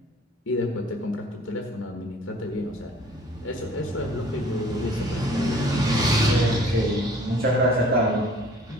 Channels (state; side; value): normal; both; correlation 0.52